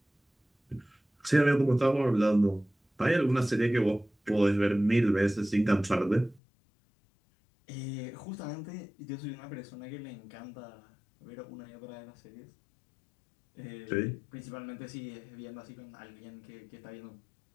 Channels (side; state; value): right; drops out; at 6.4 s